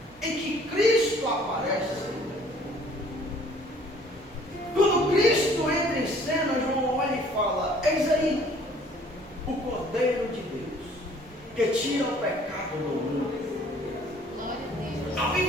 em que Cristo aparece, quando Cristo entra em cena, João olha e fala: eis aí o Cordeiro de Deus, que tira o pecado do mundo. A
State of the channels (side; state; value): both; normal; correlation 0.56